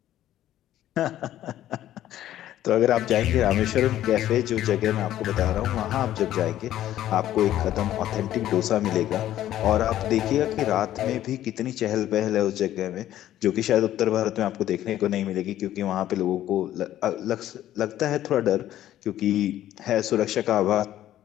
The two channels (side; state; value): right; quieter; 12.8 dB